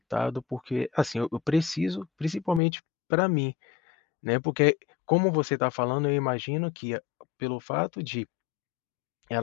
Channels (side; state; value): right; drops out; at 2.6 s